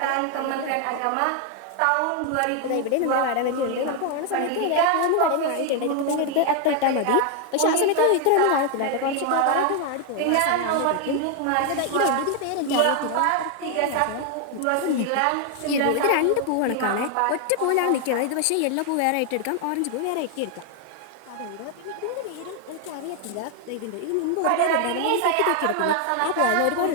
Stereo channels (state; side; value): different; both; correlation 0.00